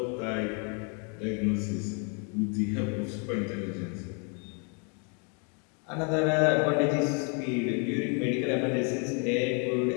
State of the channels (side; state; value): right; quieter; 36.8 dB